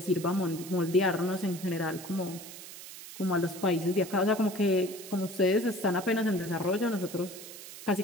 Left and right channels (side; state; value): right; noise; hiss, 13 dB below the sound